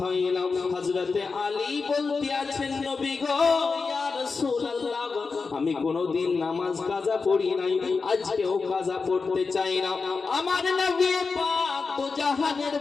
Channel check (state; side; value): quieter; right; 4.6 dB